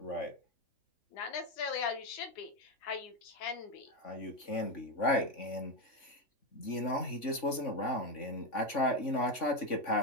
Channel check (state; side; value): late; right; 3.5 ms